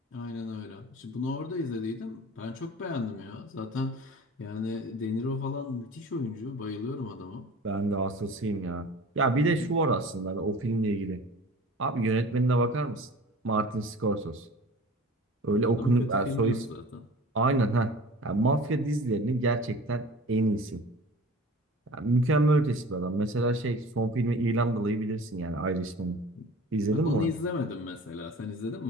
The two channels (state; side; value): normal; both; correlation 0.41